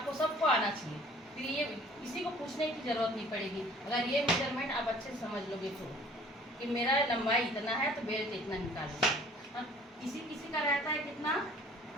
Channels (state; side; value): normal; both; correlation 0.53